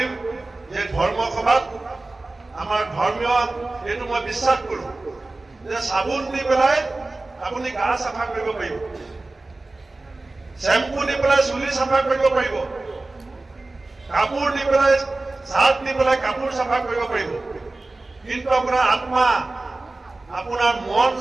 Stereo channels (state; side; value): quieter; left; 3.1 dB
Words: যে ধৰ্ম সভাত আমাৰ ধৰ্মীয় এইটো মই বিশ্বাস কৰোঁ যে চাবোন দি পেলাই আপুনি গা চাফা কৰিব পাৰিব, শ্বেম্পু দি পেলাই চুলি চাফা কৰিব পাৰিব, কাপোৰ দি পেলাই চাৰ্ট দি পেলাই কাপোৰ চাফা কৰিব পাৰিব, কিন্তু আপোনাৰ আত্মা, আপোনাৰ মন